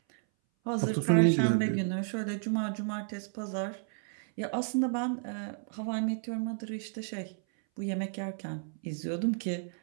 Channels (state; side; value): silent; left; 56 dB below the other